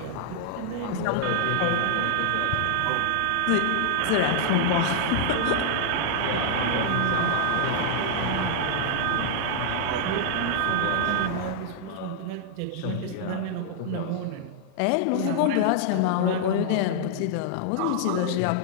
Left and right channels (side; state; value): both; different; correlation -0.01